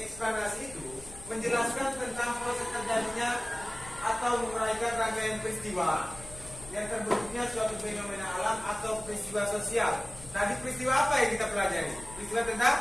itu menjelaskan tentang proses terjadinya atau menguraikan rangkaian peristiwa yang terbentuknya suatu fenomena alam atau peristiwa sosial. Tadi peristiwa apa yang kita pelajari? Peristiwa tentang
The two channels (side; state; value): left; noise; rumble, 18 dB below the sound